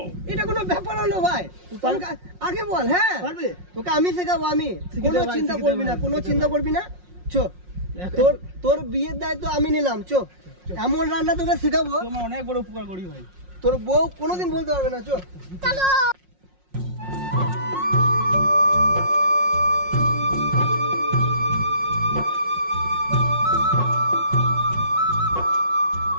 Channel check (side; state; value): left; late; 5.5 ms